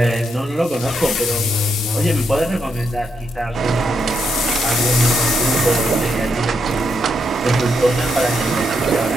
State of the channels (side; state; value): both; normal; correlation 0.79